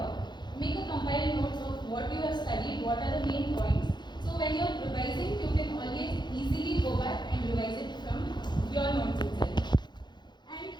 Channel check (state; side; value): late; right; 0.21 ms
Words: Make a compiled notes of what you have studied, what are the main points. So when you're revising, you can always easily go back and revise it from your notes itself. And